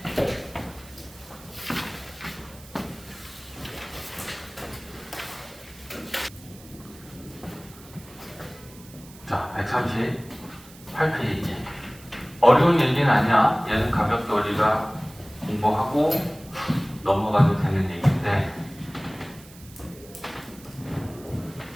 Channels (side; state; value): right; noise; hiss, 21 dB below the sound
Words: 자, 138페이지. 어려운 얘기는 아니야. 얘는 가볍게 우리가 공부하고 넘어가도 되는 얘기인데.